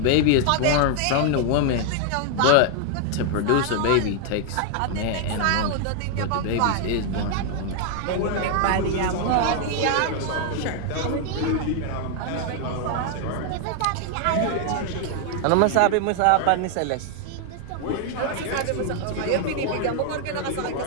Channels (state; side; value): different; both; correlation 0.00